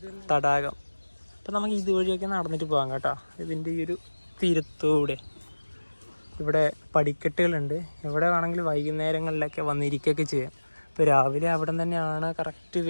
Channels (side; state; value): both; inverted; correlation -1.00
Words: തടാകം. അപ്പം നമുക്ക് ഇതുവഴിയൊക്കെ നടന്നിട്ട് പോകാം കേട്ടോ. ഇതിൻ്റെ ഈ ഒരു തീരത്തൂടെ ഇവിടെ പടിക്കെട്ടുകളുണ്ട്. ഇവിടെ വേണമെങ്കിൽ വൈകുന്നേരങ്ങളിലൊക്കെ വന്നിരിക്കുകയൊക്കെ ചെയ്യാം. ഇപ്പോൾ രാവിലെ അവിടെ തന്നെയാണ് കറക്റ്റ്